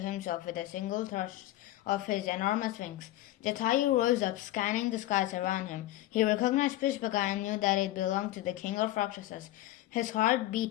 with a single thrust of his enormous wings. Jatayu rose up, scanning the skies around him. He recognized Pushpaka and knew that it belonged to the king of Rakshasas. His heart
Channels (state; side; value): quieter; right; 15.2 dB